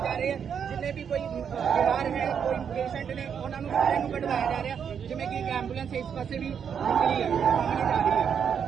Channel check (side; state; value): left; quieter; 7.5 dB